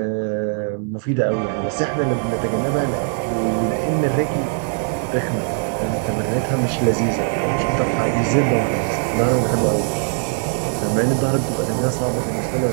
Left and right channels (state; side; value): silent; left; 58 dB below the other